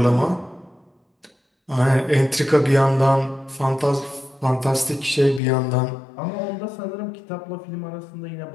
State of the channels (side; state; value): right; drops out; at 5.4 s